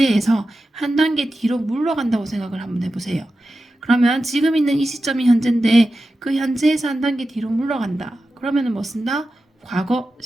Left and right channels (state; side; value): normal; both; correlation 0.92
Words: 한 단계 뒤로 물러간다고 생각을 한번 해보세요. 그러면 지금 있는 이 시점이 현재인데 그 현재에서 한 단계 뒤로 물러간다. 그러면은 뭐 쓴다? 과거